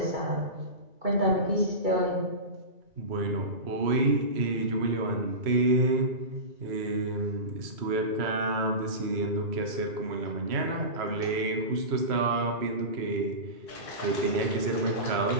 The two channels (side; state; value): left; late; 2.3 ms